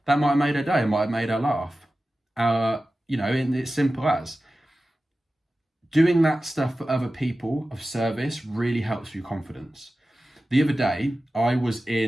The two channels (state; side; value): normal; both; correlation 0.95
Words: That might have made her day. It might have made her laugh. And it's simple as. Doing that stuff for other people of service really helps your confidence. The other day, I was